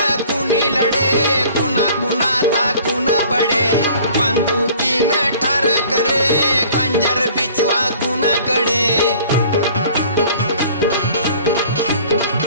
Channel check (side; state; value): both; inverted; correlation -0.51